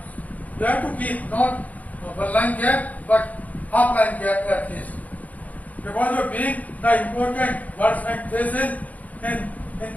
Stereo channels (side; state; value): right; late; 0.075 ms